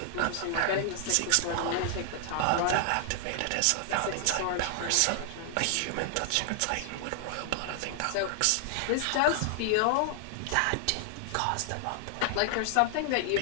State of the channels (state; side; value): different; both; correlation 0.00